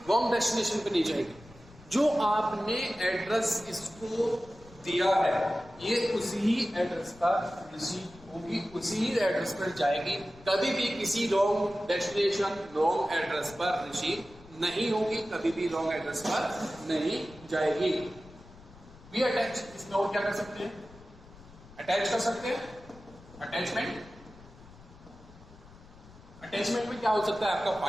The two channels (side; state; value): left; noise; rumble, 21 dB below the sound